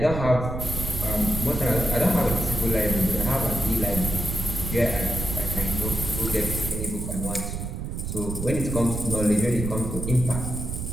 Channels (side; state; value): right; noise; rumble, 4 dB below the sound